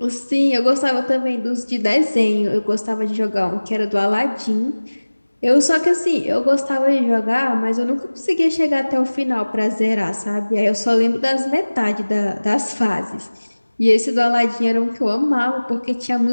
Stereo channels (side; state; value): both; inverted; correlation -1.00